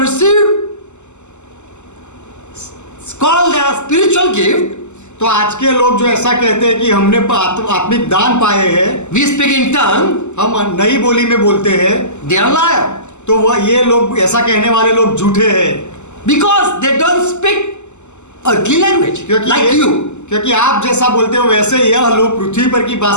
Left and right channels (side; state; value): right; late; 0.83 ms